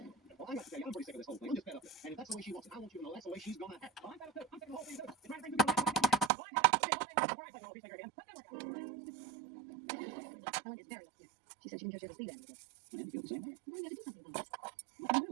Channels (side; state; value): left; drops out; at 6.3 s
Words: Well, I got to say, I'm pretty sick of this whole thing. I'm just fed up with it. And if that's the way she wants it, I want you to know that's the way she's gonna act. I'm fed up too. I'm sick of the whole thing too. You're trying to bring people back. Helen is very upset. She said she didn't just ever see that again. I didn't feel the same way. Well, you got to do something about it. What can you do?